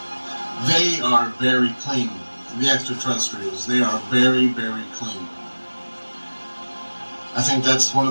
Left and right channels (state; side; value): inverted; both; correlation -1.00